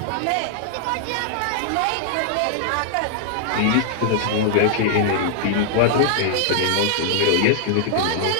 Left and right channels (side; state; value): both; different; correlation -0.01